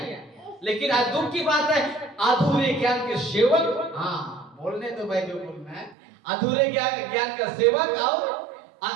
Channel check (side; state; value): left; drops out; at 6.0 s